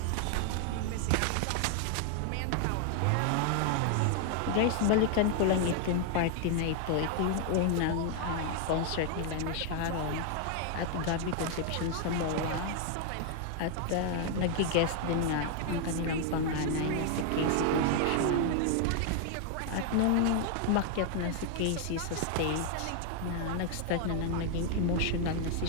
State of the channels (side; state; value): both; different; correlation 0.00